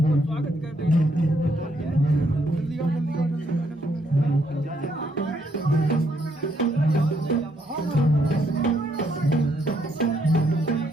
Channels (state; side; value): normal; both; correlation 0.73